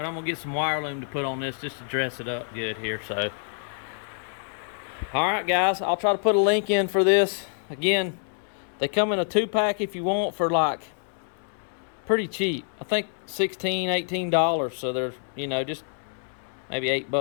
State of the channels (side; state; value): right; silent; 60 dB below the other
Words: I'm gonna get some wire loom to put on this just to dress it up good here. So all right guys, I'll try to put a link in for this. Again, they come in a 2-pack if you want for like pretty cheap. I think $16-18. So they're, you know, just maybe